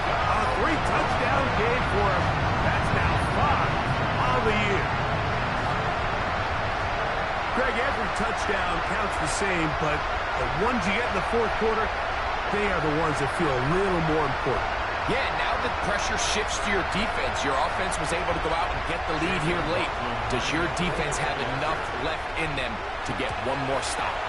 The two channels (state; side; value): identical; both; correlation 1.00